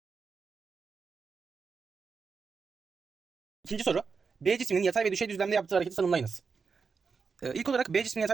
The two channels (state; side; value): quieter; left; 5.3 dB